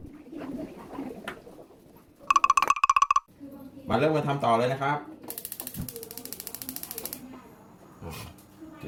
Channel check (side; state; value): both; identical; correlation 1.00